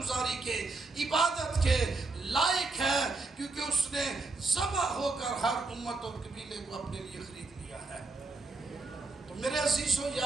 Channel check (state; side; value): quieter; left; 3.5 dB